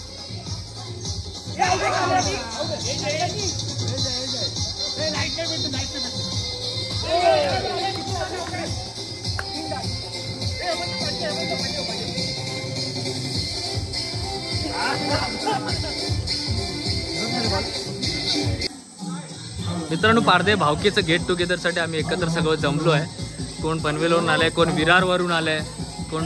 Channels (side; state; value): both; identical; correlation 1.00